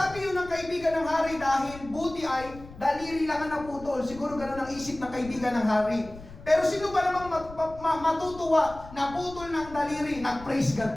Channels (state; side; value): noise; left; rumble, 17 dB below the sound